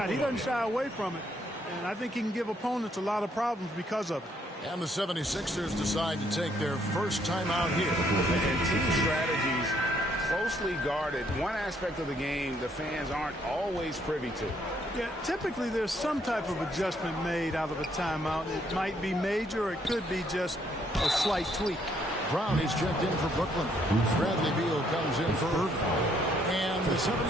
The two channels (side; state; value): both; normal; correlation 0.69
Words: He doesn't shy away from it. And I think he can give opponents a lot of problems because of it. And the 76ers decide to take their first time out here. And team strategies closely guarded. One aspect of the game the fans aren't always privy to. Yeah, typically there's some type of adjustment made out of a timeout. It might be major or it could be just a slight tweak. Brown is checked in for Brooklyn. Bradley Beal comes in for Irving. And the